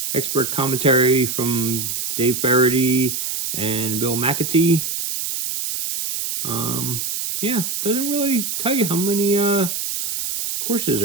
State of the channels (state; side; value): noise; right; hiss, 3 dB below the sound